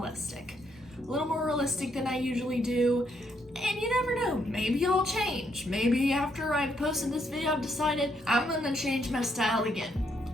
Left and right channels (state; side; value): normal; both; correlation 0.74